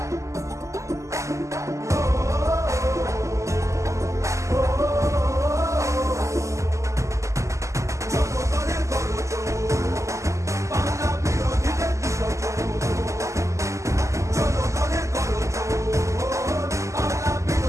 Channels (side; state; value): left; late; 0.15 ms